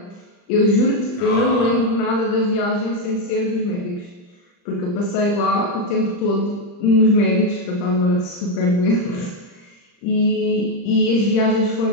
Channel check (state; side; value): late; right; 40 ms